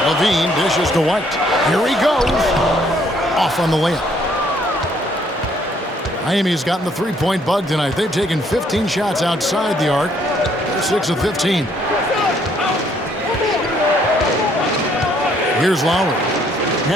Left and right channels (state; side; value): normal; both; correlation 0.66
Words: Levine dishes to White. Here he goes. Off on the layup. Miami's gotten the three-point bug tonight. They've taken 15 shots outside the arc. 6 of 15. Here's Lowry.